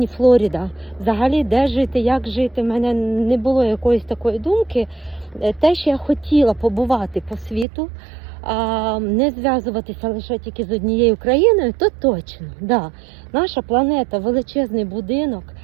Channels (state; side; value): drops out; left; at 7.7 s